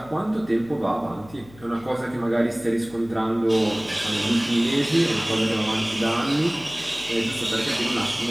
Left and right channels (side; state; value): left; noise; hum, 22 dB below the sound